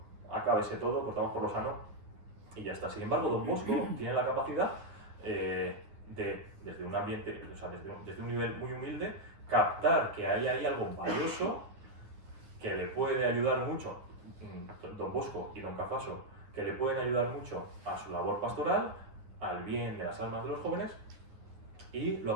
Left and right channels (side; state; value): left; late; 9.6 ms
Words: acábese todo, cortamos por lo sano y ya está. Sin embargo, Don Bosco tiene la capacidad desde un ambiente, o sea, desde un nivel muy humilde, captar que hay ahí algo valioso que le puede ayudar mucho, Don Bosco y Don Cafaso, que le pueden ayudar mucho a su labor pastoral, al bien de las almas de los jóvenes, y lo